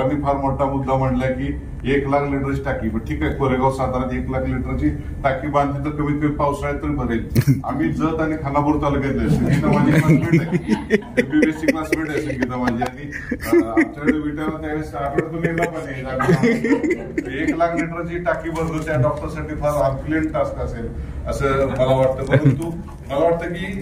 फार मोठा मुद्दा मांडला की 1 लाख लिटरची टाकी. पण ठीक आहे, कोरेगाव साताऱ्यात 1 लाख लिटरची टाकी बांधली तर कमीत कमी पावसाळ्यात तरी भरेल. आम्ही जत आणि खानापूर तालुक्यातले, संगीता माझी क्लासमेट आहे, MBBSची क्लासमेट आहे संगीता माझी. आणि आमच्याकडे विटायला त्यावेळेस आठवड्यातून येणार पण 1 लाख लिटरची टाकी भरतो त्या डॉक्टरसाठी फार हरक्युलेंट टास्क असेल असं मला वाटतं. परंतु मला वाटतं की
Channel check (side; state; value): both; identical; correlation 1.00